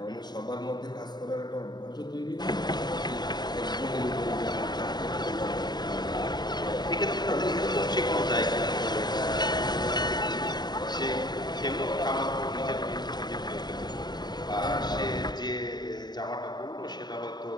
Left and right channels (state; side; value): late; right; 0.20 ms